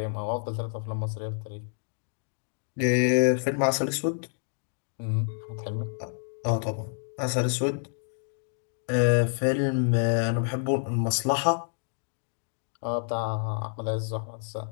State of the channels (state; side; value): silent; right; digital silence